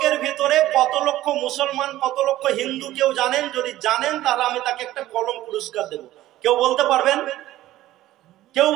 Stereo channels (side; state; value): left; quieter; 14.9 dB